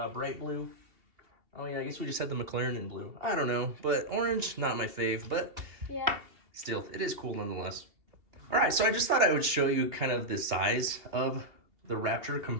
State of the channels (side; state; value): left; late; 2.7 ms